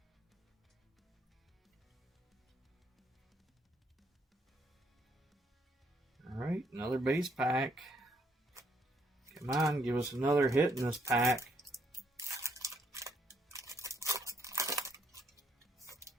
All right, another base pack. Come on, give us another hit in this pack.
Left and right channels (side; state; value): both; normal; correlation 0.71